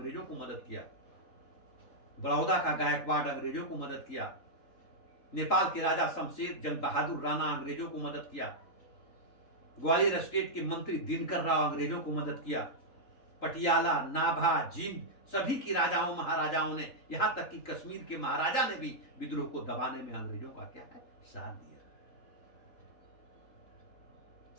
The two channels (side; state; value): right; late; 3.8 ms